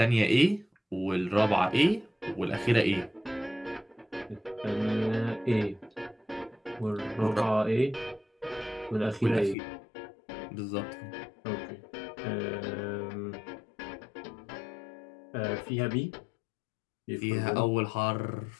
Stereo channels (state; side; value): drops out; right; at 9.6 s